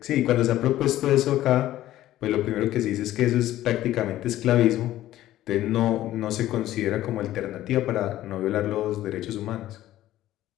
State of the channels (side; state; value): right; quieter; 14.2 dB